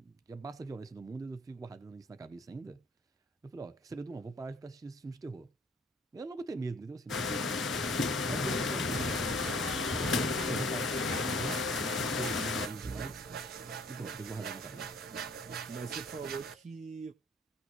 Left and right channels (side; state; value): both; normal; correlation 0.56